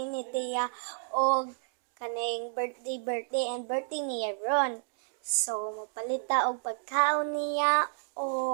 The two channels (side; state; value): left; silent; digital silence